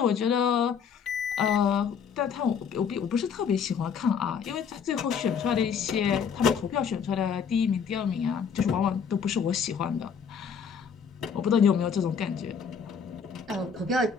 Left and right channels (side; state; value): right; quieter; 6.7 dB